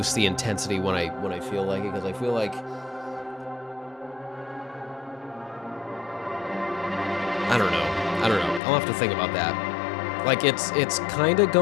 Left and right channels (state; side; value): drops out; right; at 8.6 s